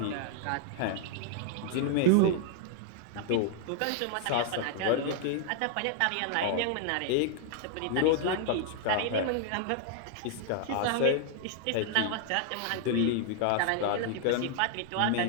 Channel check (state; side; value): different; both; correlation 0.00